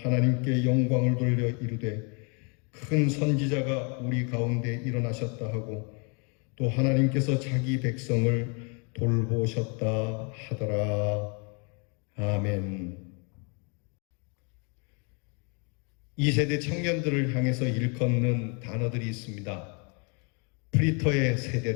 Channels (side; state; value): right; quieter; 35.1 dB